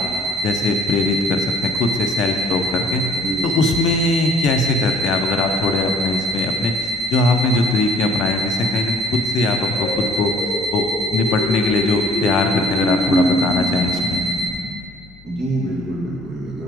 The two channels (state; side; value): noise; left; hum, 25 dB below the sound